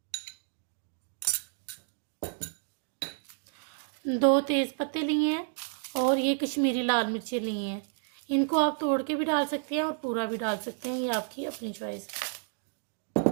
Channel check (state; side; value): silent; left; digital silence